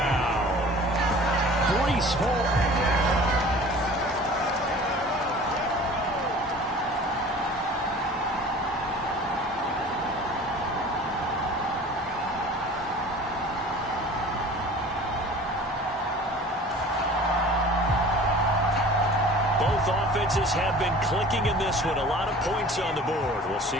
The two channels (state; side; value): normal; both; correlation 0.44